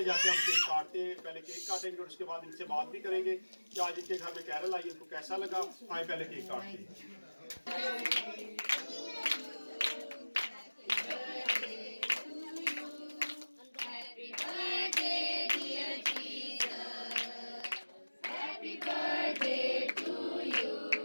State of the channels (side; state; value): both; inverted; correlation -1.00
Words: जाके हम केक काटते हैं। पहले केक काटेंगे और उसके बाद इनसे बात भी करेंगे कि आज इनके घर में कैरल आई, इनको कैसा लगा। आए पहले केक काटते हैं।